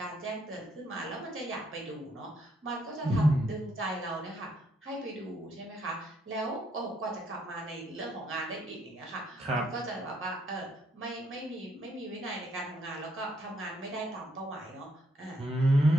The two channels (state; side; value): normal; both; correlation 0.72